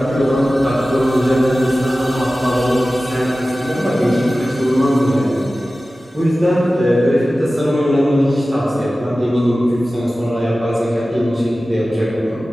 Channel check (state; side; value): normal; both; correlation 0.96